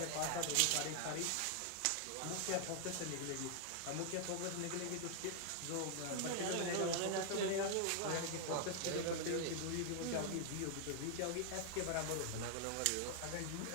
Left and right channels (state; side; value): different; both; correlation 0.00